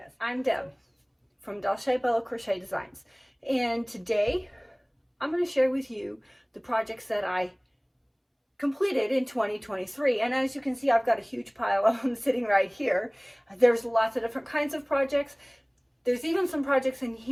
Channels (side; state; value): both; identical; correlation 1.00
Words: I'm Deb from Crochet Designs, and today I'm going to share with you the projects that I completed in 2023. And as you can see, I've got a huge pile of them sitting right here. There's lots of different kinds of projects. There's even some projects in